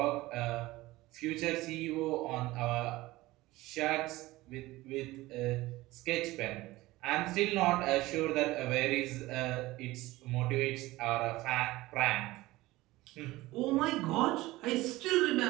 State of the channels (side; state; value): left; quieter; 18.8 dB